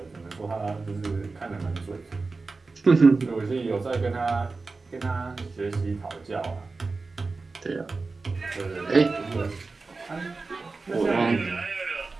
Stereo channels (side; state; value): left; quieter; 3.9 dB